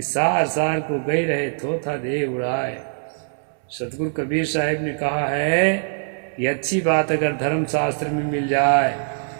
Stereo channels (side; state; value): left; silent; digital silence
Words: सार सार को गई रहे थोथा दे उड़ाए। सतगुरु कबीर साहिब ने कहा है, ये अच्छी बात अगर धर्मशास्त्र में मिल जाए,